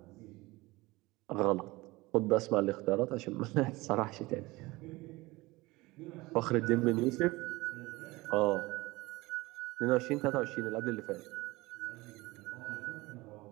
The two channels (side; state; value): left; quieter; 21.3 dB